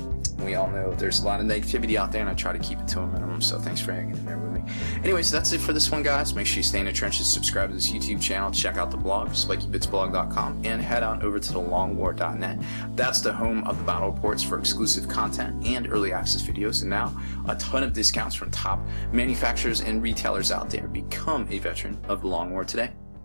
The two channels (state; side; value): inverted; both; correlation -1.00